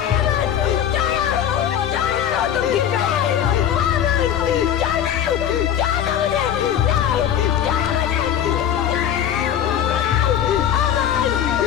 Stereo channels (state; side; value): quieter; right; 9.7 dB